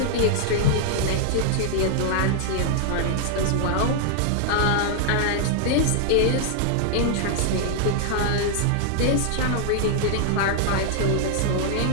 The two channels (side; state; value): both; different; correlation 0.00